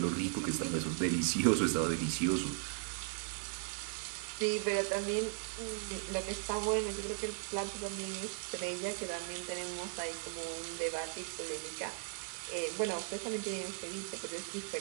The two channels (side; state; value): left; silent; 53 dB below the other